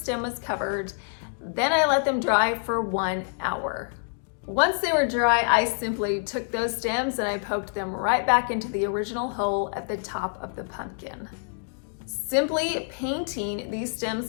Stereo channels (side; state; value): right; silent; 60 dB below the other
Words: was covered. Then I let them dry for 1 hour. Once they were dry, I simply took those stems and I poked them right back into the original hole at the top of the pumpkin. Simply painting these